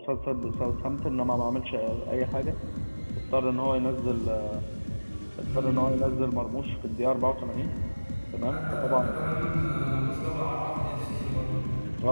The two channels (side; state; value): both; inverted; correlation -1.00